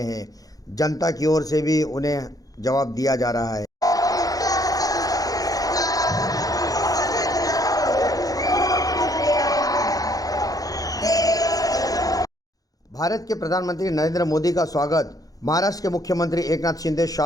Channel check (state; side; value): late; right; 0.17 ms